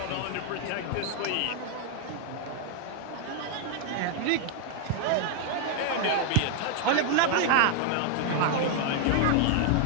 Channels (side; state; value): both; different; correlation 0.00